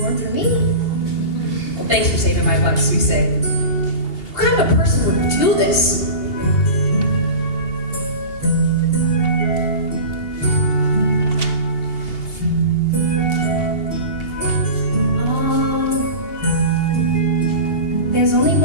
for me. Well, thanks for saving my butt, Suisei. What kind of a person would do this? There's only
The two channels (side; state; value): right; late; 2.8 ms